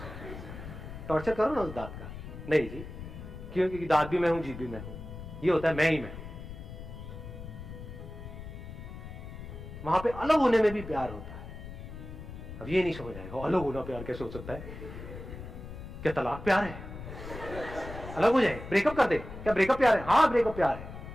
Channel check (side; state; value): left; noise; rumble, 11 dB below the sound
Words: टॉर्चर करो ना उस दांत का। नहीं जी, क्यों? क्योंकि दांत भी मैं हूं, जीभ भी मैं हूं, ये होता है मैं ही मैं हूं। वहां पे अलग होने में भी प्यार होता है। अब ये नहीं समझ आएगा, अलग होना प्यार कैसे हो सकता है? क्या तलाक प्यार है? अलग हो जाए, ब्रेकअप कर दे, क्या ब्रेकअप प्यार है? हाँ ब्रेकअप प्यार